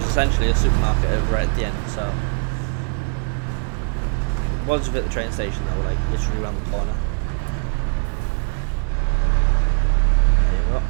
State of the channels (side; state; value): left; silent; 59 dB below the other